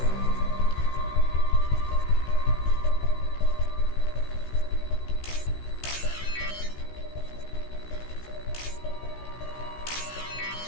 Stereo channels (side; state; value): right; late; 16 ms